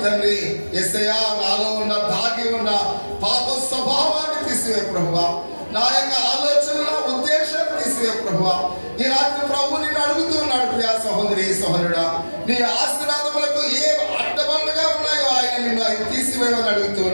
తండ్రి, యేసయ్యా నాలో ఉన్న దాగి ఉన్న పాప స్వభావాన్ని తీసివే ప్రభువా. నా యొక్క ఆలోచనల ఉద్దేశాన్ని తీసివే ప్రభువా. ఈ రాత్రి ప్రభు నిన్ను అడుగుతూ ఉన్నాడు. ప్రియ సహోదరి సహోదరుడా, నీ ఆశీర్వాదములకు ఏ అడ్డబండగా ఉన్నాయో ఆయన నిన్ను ఆయన తీసివేయమని అడుగుతూ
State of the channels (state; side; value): inverted; both; correlation -1.00